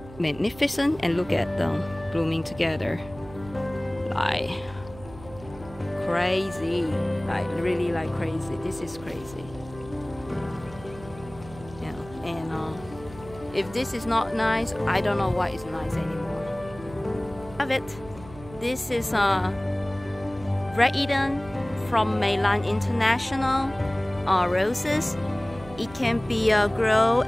magnificent? And look at them blooming together, like crazy, like really like crazy. This is crazy. Yeah. And if this is not nice, I don't know what is nice anymore. Have it. This is Red Eden from Meilland International roses. It can be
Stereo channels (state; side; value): noise; right; hum, 18 dB below the sound